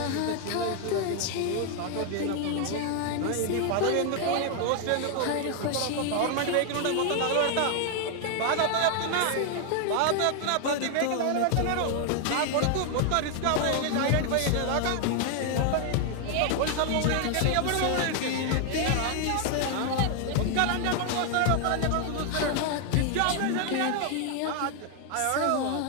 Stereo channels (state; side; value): different; both; correlation 0.00